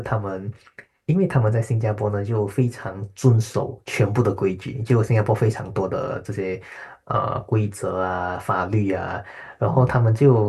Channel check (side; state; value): both; identical; correlation 1.00